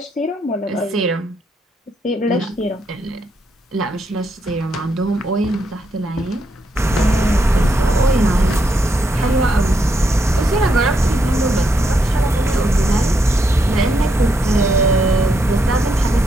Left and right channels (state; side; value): normal; both; correlation 0.79